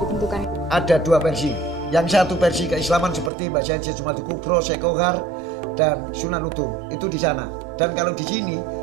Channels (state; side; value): drops out; left; at 3.3 s